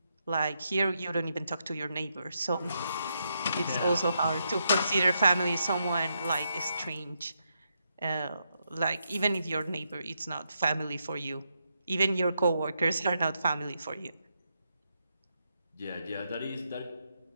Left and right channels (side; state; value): both; inverted; correlation -0.81